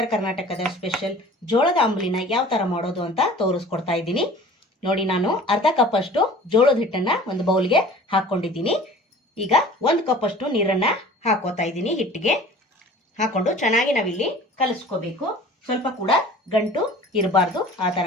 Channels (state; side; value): normal; both; correlation 0.45